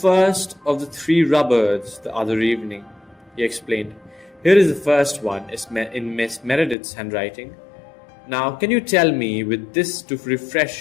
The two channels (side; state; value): right; drops out; at 6.8 s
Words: of the 3 Roberts the other evening," he explained. "Here is the first one, in Miss Meredith's handwriting. Now, can you tell me, with this to